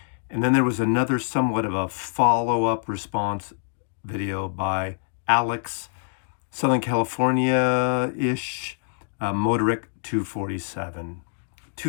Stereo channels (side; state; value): right; silent; digital silence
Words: And then there was another somewhat of a follow-up response video by Alex, Southern California-ish, Motoric 247.